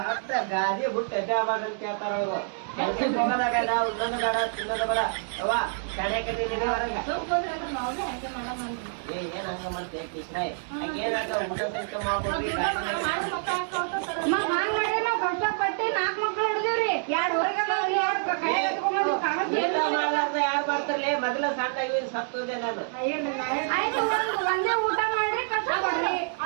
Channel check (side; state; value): left; silent; digital silence